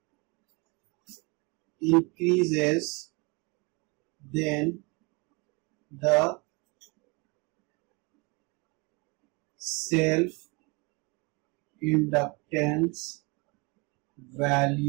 increases, then the self inductance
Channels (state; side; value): quieter; left; 29.2 dB